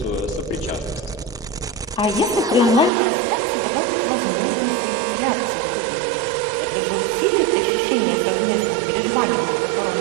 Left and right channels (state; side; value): drops out; left; at 2.9 s